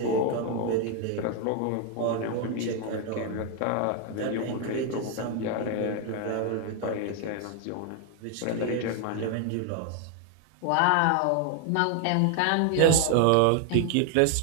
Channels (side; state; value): both; different; correlation 0.00